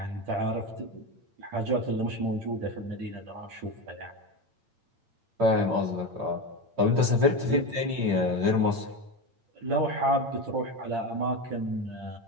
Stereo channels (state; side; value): late; left; 8.8 ms